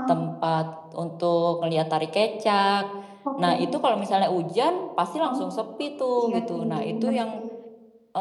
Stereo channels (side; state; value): both; identical; correlation 1.00